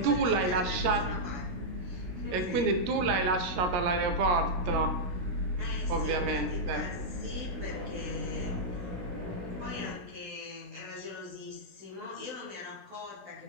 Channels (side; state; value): left; late; 16 ms